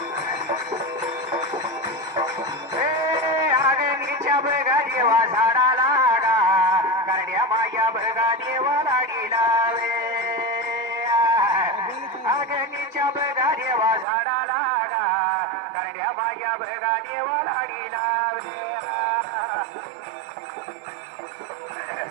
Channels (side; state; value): left; drops out; at 14.1 s